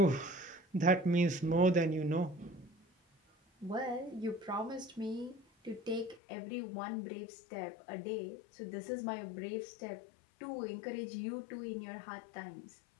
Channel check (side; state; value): right; drops out; at 6.2 s